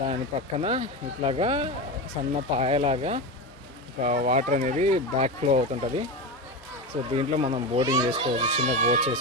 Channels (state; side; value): normal; both; correlation 0.20